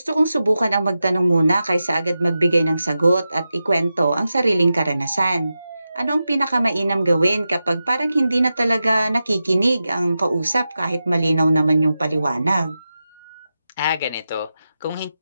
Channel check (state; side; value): inverted; both; correlation -0.91